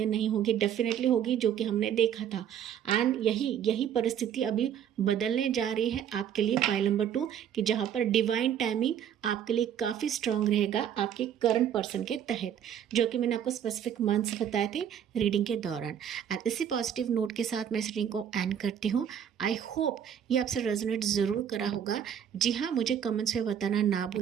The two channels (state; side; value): quieter; left; 9.2 dB